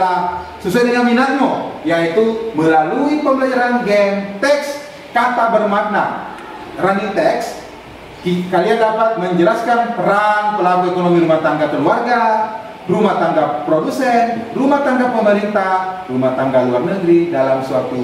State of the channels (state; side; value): identical; both; correlation 1.00